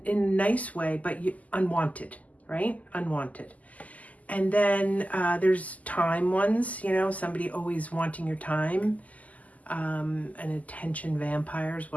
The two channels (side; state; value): right; late; 0.075 ms